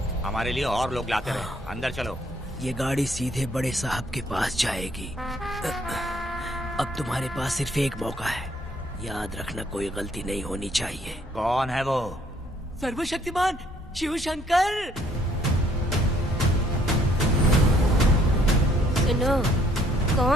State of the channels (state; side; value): normal; both; correlation 0.65